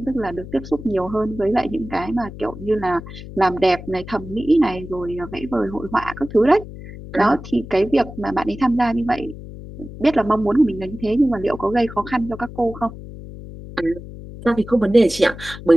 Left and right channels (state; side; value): noise; left; hum, 13 dB below the sound